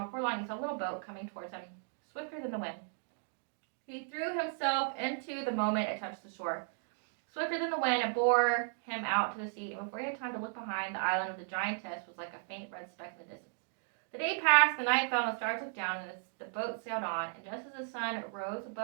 before long he saw a little boat coming towards him, swifter than the wind. He threw himself into the moment it touched the shore. Swifter than the wind, it bore him out to the sea, and before he had time to look behind, the island of the giantess was like a faint red speck in the distance. The day passed, the night fell, and the stars looked down, and the boat sailed on, and just as the sun rose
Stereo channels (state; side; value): silent; left; 54 dB below the other